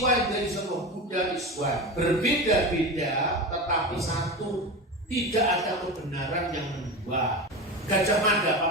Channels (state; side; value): normal; both; correlation 0.25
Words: and the essence of Buddha is one. Berbeda-beda tetapi satu. Tidak ada kebenaran yang kedua. Gajah Mada,